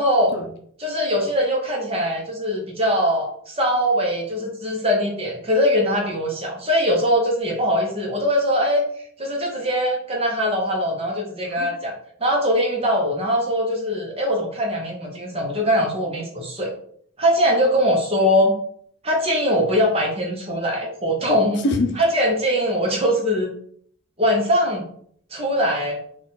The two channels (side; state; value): both; normal; correlation -0.04